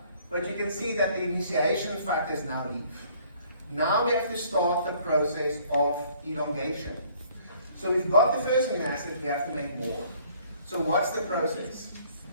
But you can see that the initiation factors now leave. Now we have to start the process of elongation. So we've got the first amino acid, we have to make more. So what's the process?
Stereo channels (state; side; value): inverted; both; correlation -0.60